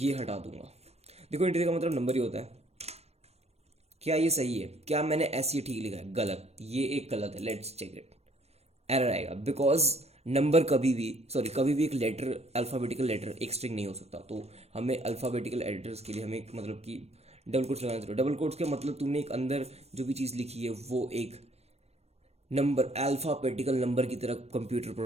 हटा दूंगा, देखो इंटीजर का मतलब नंबर ही होता है, क्या ये सही है? क्या मैंने ऐसे ही ठीक लिखा है? गलत, ये एक गलत है, लेट्स चेक इट, एरर आएगा बिकॉज नंबर कभी भी एक लेटर, अल्फ़ाबेटिकल लेटर एक स्ट्रिंग नहीं हो सकता। तो हमें अल्फ़ाबेटिकल एडिटर्स के लिए हमें एक मतलब कि डबल कोट्स लगाना जरूरी है। डबल कोट्स के मतलब तुमने एक अंदर जो भी चीज़ लिखी है वो एक नंबर, अल्फ़ाबेटिकल नंबर की तरह कंप्यूटर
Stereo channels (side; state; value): left; late; 0.31 ms